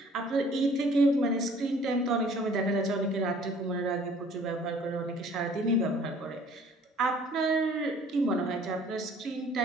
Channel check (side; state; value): both; normal; correlation 0.54